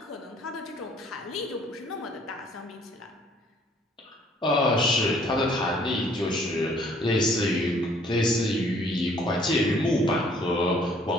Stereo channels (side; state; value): both; normal; correlation 0.60